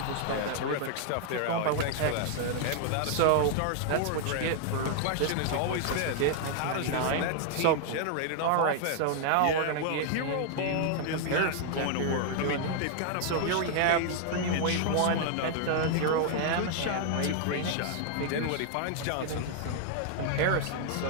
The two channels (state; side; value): different; both; correlation 0.00